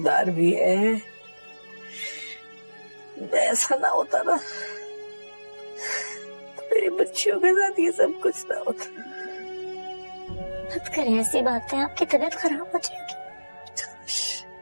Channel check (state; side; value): inverted; both; correlation -1.00